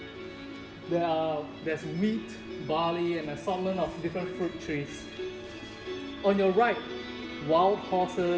There's wheat, barley, and an assortment of different fruit trees. On your right, wild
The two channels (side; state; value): both; identical; correlation 1.00